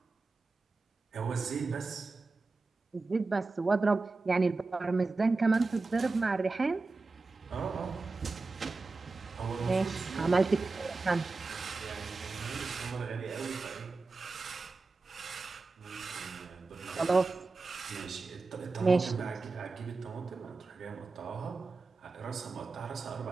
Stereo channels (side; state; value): left; quieter; 3.8 dB